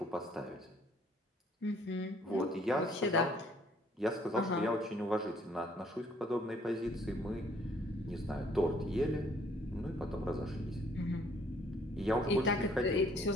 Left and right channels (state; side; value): normal; both; correlation 0.62